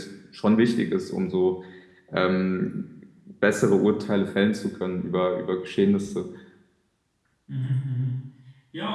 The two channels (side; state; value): both; identical; correlation 1.00